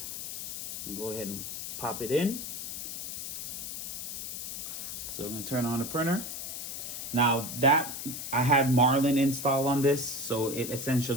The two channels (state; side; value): noise; left; hiss, 6 dB below the sound